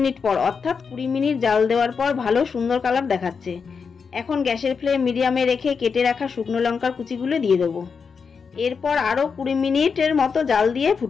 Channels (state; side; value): quieter; right; 5.7 dB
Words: পর অর্থাৎ 20 মিনিট জাল দেওয়ার পর ভালো সুন্দর কালার দেখাচ্ছে। এখন গ্যাসের ফ্লেম মিডিয়ামে রেখে কেটে রাখা শুকনো লঙ্কার কুচিগুলো দিয়ে দেবো। এরপর আরও 20 মিনিটের মতো জাল দিয়ে